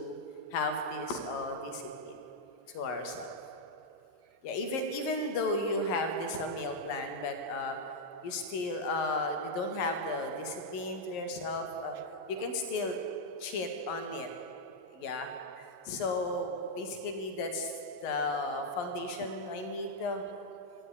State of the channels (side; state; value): right; late; 11 ms